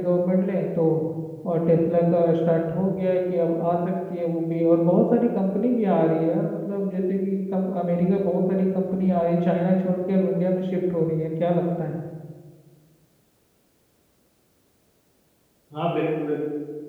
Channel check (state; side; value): identical; both; correlation 1.00